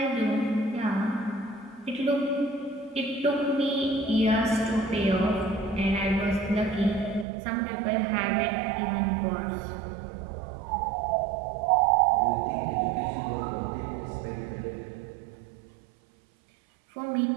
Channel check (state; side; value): drops out; left; at 7.2 s